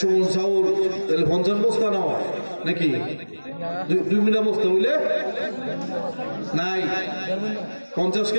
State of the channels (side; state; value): both; inverted; correlation -1.00